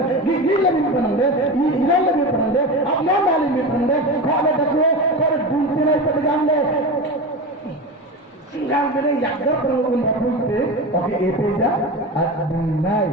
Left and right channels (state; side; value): normal; both; correlation 0.25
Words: gigil lagi panande ilal lagi panande apna mali me panande khale dakho kar dunte nai padgamle singal bene yakda perun bapuite oke epeja adinai